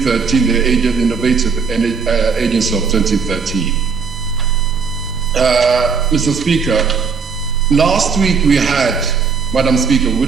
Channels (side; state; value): left; quieter; 5.6 dB